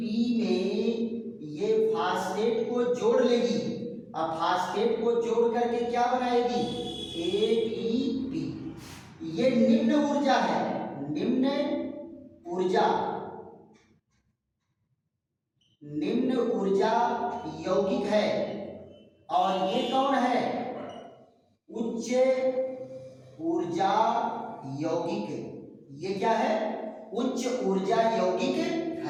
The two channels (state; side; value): identical; both; correlation 1.00